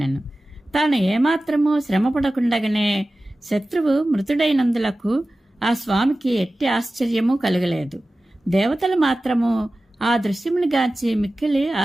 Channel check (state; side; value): normal; both; correlation 0.95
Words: తాను ఏమాత్రమూ శ్రమపడకుండగానే శత్రువు మృతుడైనందులకు ఆ స్వామికి ఎట్టి ఆశ్చర్యము కలగలేదు. దేవతలు మాత్రము ఆ దృశ్యమును గాంచి మిక్కిలి